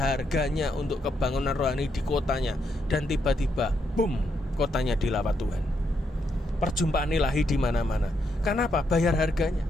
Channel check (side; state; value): both; normal; correlation 0.78